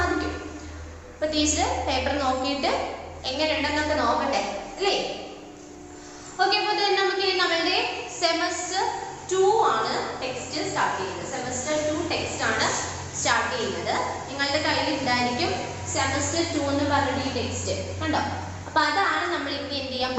അപ്പോൾ ടീച്ചർ പേപ്പർ നോക്കിയിട്ട് എങ്ങനെയുണ്ടെന്നൊക്കെ നോക്കട്ടെ അല്ലേ? ഓക്കെ, അപ്പോൾ നമുക്ക് നമ്മളുടെ സെമസ്റ്റർ 2 ആണ് ടെക്സ്റ്റ് സ്റ്റാർട്ട് ചെയ്യുന്നത്. സെമസ്റ്റർ 2 ടെക്സ്റ്റ് ആണ് സ്റ്റാർട്ട് ചെയ്യുന്നത്. നിങ്ങളുടെ കയ്യിൽ ഉണ്ടായിരിക്കും സെമസ്റ്റർ 2 എന്ന് പറഞ്ഞിട്ട് ഈ ടെക്സ്റ്റ് കണ്ടോ? അപ്പോൾ അതാണ് നമ്മൾ ഇനി എന്ത് ചെയ്യാൻ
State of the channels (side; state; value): both; identical; correlation 1.00